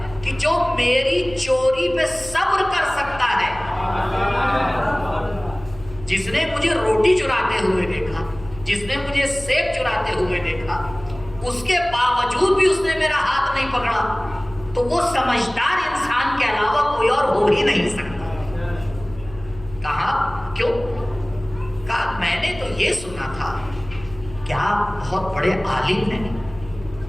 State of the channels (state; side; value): noise; left; hum, 17 dB below the sound